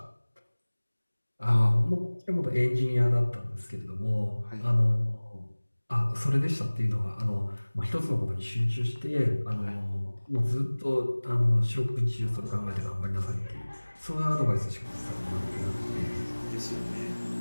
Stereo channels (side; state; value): both; inverted; correlation -1.00